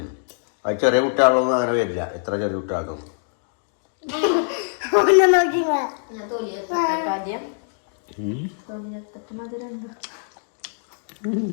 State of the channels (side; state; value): right; silent; digital silence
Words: അത് ചെറിയ കുട്ടികളൊന്നും അങ്ങനെ വരില്ല. എത്ര ചെറിയ കുട്ടികളൊന്നും